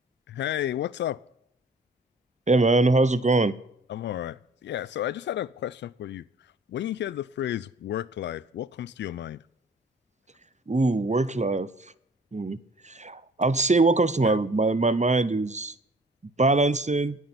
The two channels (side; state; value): both; normal; correlation 0.51